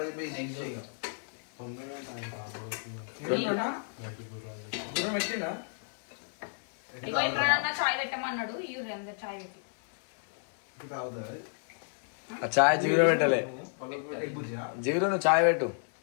చాయ్ పెట్టమన్నాడు చాయ్ పెట్టి చాయ్ జిగురు పెట్టలే జిగురు నువ్వు చాయ్ పెట్టు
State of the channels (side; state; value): right; silent; digital silence